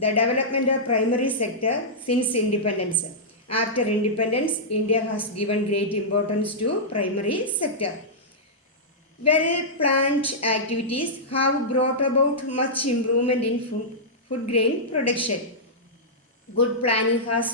development of primary sector since independence. After independence, India has given great importance to primary sector. Well-planned activities have brought about much improvement in food grain production. Good planning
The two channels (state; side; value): normal; both; correlation -0.12